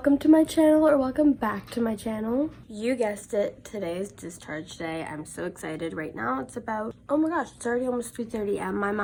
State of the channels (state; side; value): identical; both; correlation 1.00